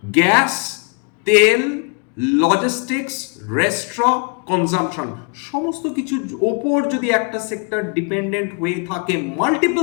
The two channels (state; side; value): quieter; right; 36.2 dB